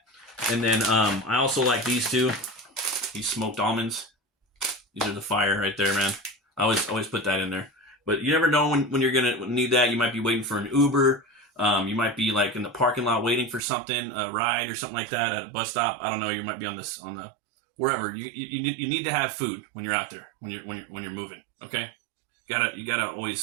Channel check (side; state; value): left; drops out; at 13.6 s